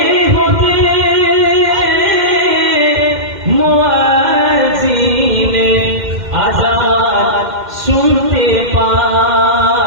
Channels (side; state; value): left; late; 2.1 ms